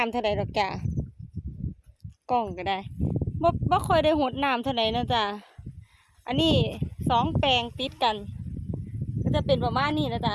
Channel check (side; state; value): both; identical; correlation 1.00